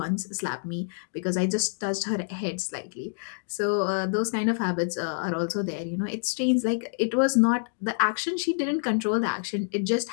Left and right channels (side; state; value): right; silent; digital silence